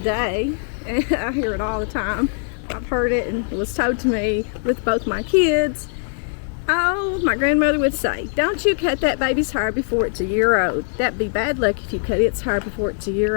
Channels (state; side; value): silent; right; 65 dB below the other